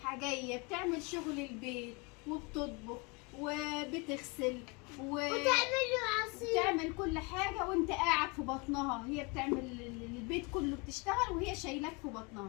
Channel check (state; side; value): quieter; right; 29.2 dB